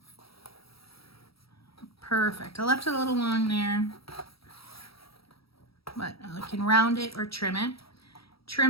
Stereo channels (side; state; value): right; late; 0.75 ms